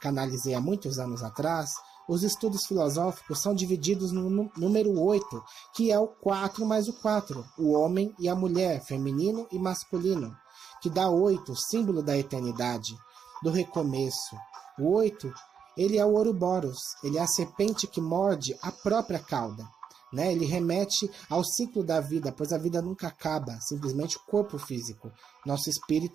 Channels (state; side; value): quieter; left; 7.2 dB